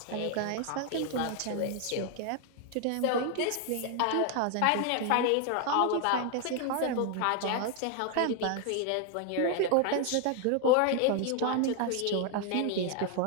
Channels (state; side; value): different; both; correlation 0.00